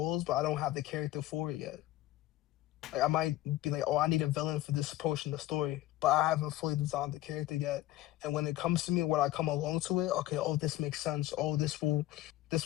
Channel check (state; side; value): quieter; right; 15.3 dB